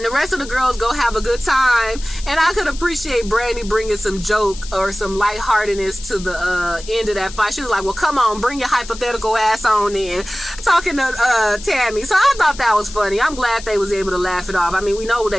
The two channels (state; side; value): noise; left; hiss, 15 dB below the sound